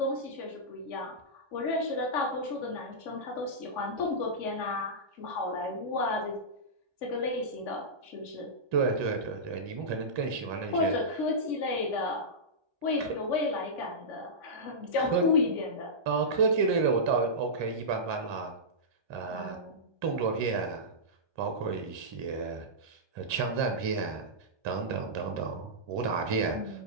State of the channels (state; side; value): late; left; 1.2 ms